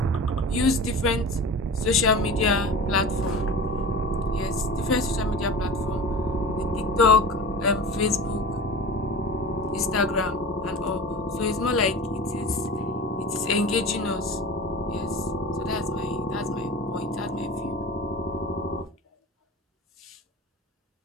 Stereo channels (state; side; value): normal; both; correlation 0.34